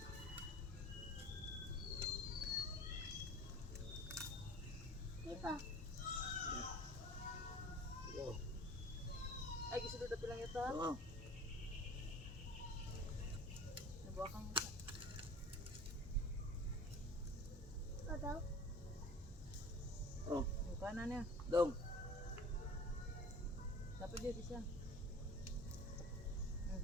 Di ba? Oh. Ay, gisulod na pilang ito. Oh. Nabuha kang ito. Ano? Oh. Yung kanan niya. Dong. Dapat dia bisa.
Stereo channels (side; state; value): both; normal; correlation 0.43